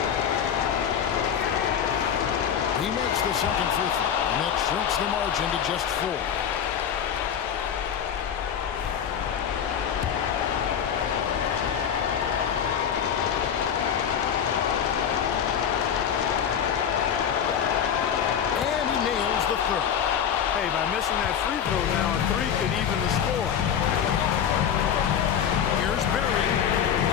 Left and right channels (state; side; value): quieter; right; 8.4 dB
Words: He makes the second free throw, and that shrinks the margin to just 4. And he nails the third. Hey, by missing that free throw now, a 3 could even the score. Here's Berry.